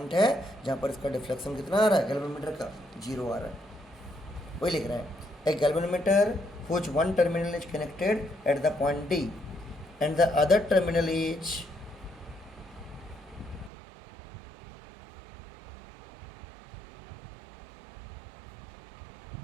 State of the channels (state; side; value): drops out; left; at 13.7 s